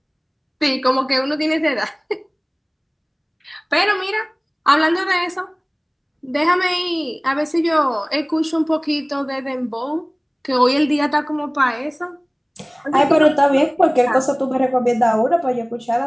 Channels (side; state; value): both; identical; correlation 1.00